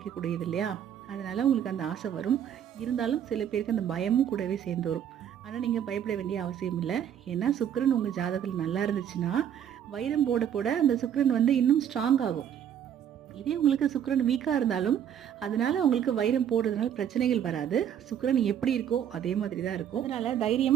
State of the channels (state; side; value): quieter; left; 9.4 dB